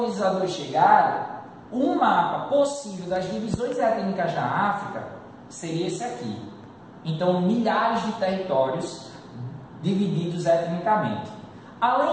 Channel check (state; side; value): identical; both; correlation 1.00